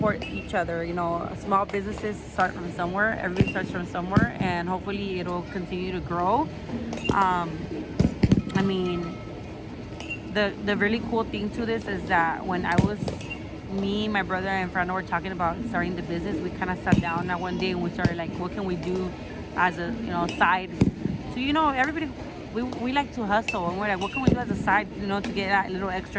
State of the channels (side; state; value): both; identical; correlation 1.00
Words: each other. You know, small businesses start from somewhere. Everybody starts from somewhere, and hopefully it'll continue to grow. I mean, the really cool thing to this is that when me, my brother, and Fernando were talking about starting the business, we kind of sat down that one day and we started like, what can we do as a, you know, side? So, you know, everybody, we like to hustle, and we're like, what can we do as a side, you know, to get that little extra